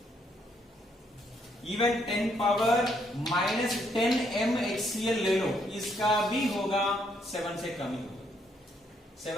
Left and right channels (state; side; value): normal; both; correlation 0.72